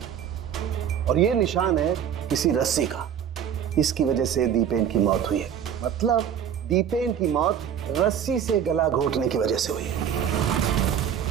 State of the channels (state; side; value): quieter; left; 8.8 dB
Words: और ये निशान है किसी रस्सी का। इसकी वजह से दीपेन की मौत हुई है। मतलब दीपेन की मौत रस्सी से गला घोटने की वजह से हुई है।